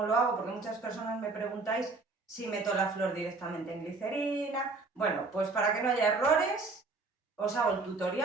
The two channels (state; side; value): quieter; left; 3.8 dB